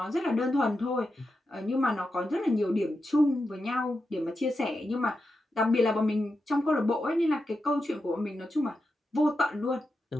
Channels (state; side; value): normal; both; correlation 0.88